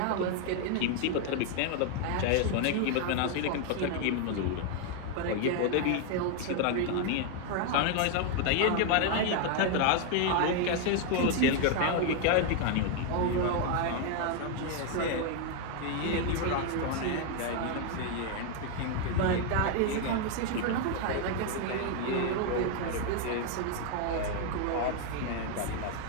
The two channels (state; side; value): different; both; correlation 0.00